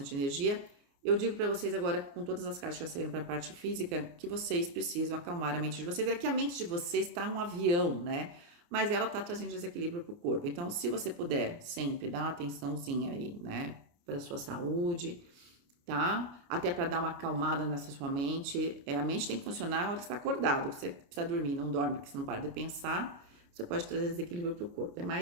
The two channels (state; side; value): late; left; 29 ms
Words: energia. Eu digo para vocês agora, com todas as cartas que já saíram para a parte física, que vocês precisam acalmar a mente de vocês. É que a mente de vocês está um avião, né? Mas ela está trazendo desequilíbrio para o corpo. Então, se você puder sempre dar uma atençãozinha aí, né? Para a sua saúde, tá? Até para dar uma acalmada nessa sua mente. A mente tem que funcionar na hora que você está acordado, que você precisa dormir, não dorme, porque você não para de pensar. Você pode trazer desequilíbrio para o corpo. É